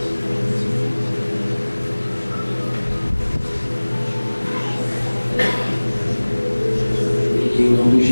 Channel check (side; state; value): both; inverted; correlation -1.00